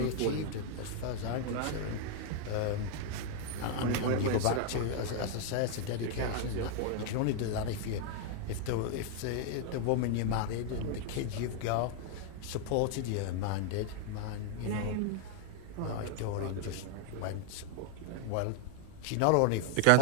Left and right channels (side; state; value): both; different; correlation 0.00